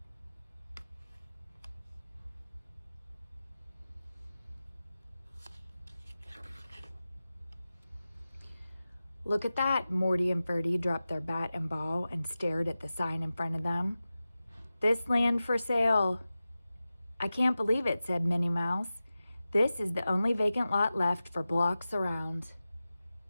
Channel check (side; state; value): both; inverted; correlation -0.95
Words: Look at that, Morty and Ferdy dropped their bat and ball and stared at the sign in front of them. This land for sale. I can't believe it, said Minnie Mouse. This is the only vacant lot left for blocks around.